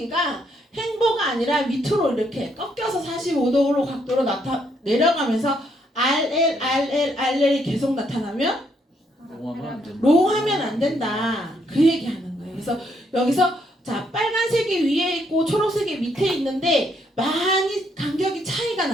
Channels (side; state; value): both; normal; correlation 0.73